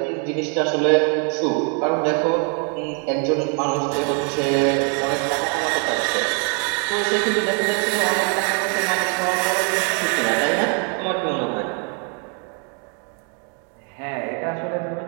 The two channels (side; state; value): left; quieter; 39.8 dB